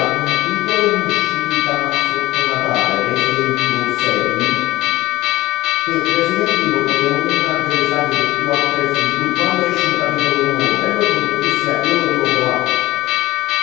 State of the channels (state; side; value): quieter; right; 17.6 dB